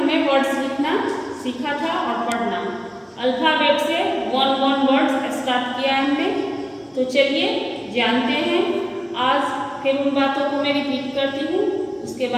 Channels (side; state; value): both; identical; correlation 1.00